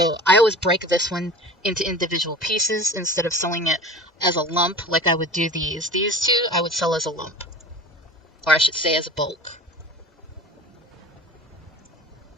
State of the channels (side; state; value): both; normal; correlation 0.37